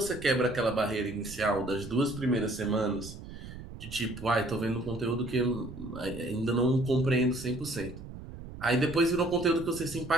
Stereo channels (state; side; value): noise; right; rumble, 13 dB below the sound